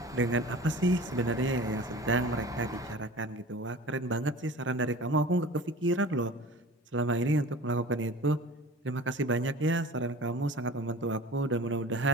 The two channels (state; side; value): normal; both; correlation 0.40